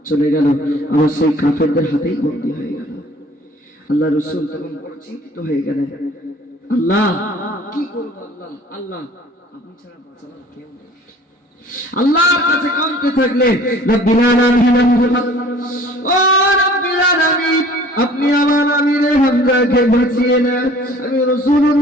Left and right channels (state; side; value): normal; both; correlation 0.50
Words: চলে গেল, আমার সেই কাফেরদের হাতেই বন্দী হয়ে গেল। আল্লাহ রাসূল তখন বড় চিন্তিত হয়ে গেলেন, আল্লাহ কি করব? আল্লাহ আল্লাহ আপনি ছাড়া বাঁচানোর কেউ নেই। আল্লাহর কাছে কাঁদতে থাকলেন, রব্বিল আলামিন, ও রব্বিল আলামিন, আপনি আমার আমির হামজা হামজাকে বাঁচিয়ে না। আমি